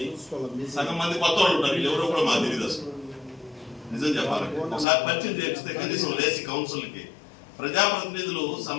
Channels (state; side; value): drops out; right; at 4.9 s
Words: సగం మంది కొత్త వాళ్ళు ఉంటారు. ఎవరో కూడా మాకు తెలియదు అసలు. నిజం చెప్పాలి, ఒకసారి పరిచయం చేపిస్తే కనీసం లేచి కౌన్సిల్కి ప్రజాప్రతినిధులు